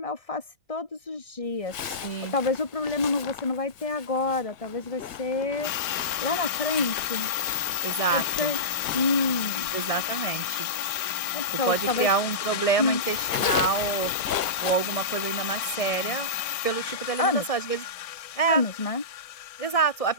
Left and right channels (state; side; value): late; right; 1.6 ms